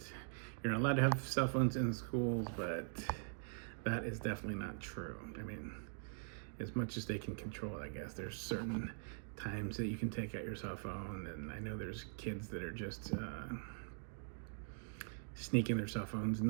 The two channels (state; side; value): silent; left; digital silence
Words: you're not allowed to have cell phones in schools, but that is definitely not true. I mean, as much as they can control it, I guess. There's certain times that you can take out your cell phone, and I know there's kids that are just sneaking their cell phones and